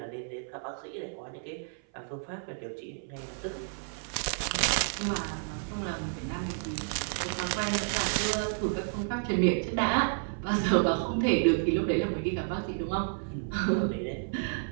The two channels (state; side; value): silent; left; 55 dB below the other